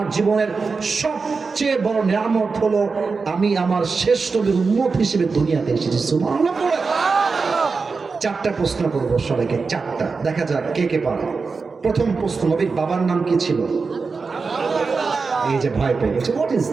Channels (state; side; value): quieter; left; 4.6 dB